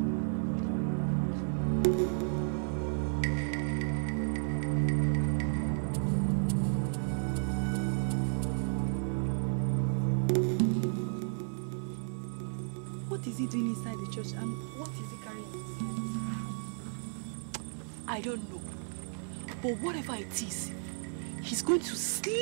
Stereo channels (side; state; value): left; silent; 56 dB below the other